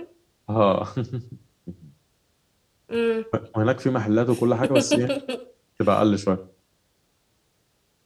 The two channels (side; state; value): both; identical; correlation 1.00